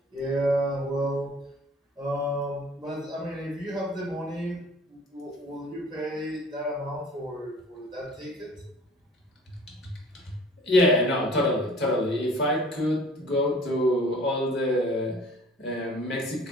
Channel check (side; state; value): both; normal; correlation 0.48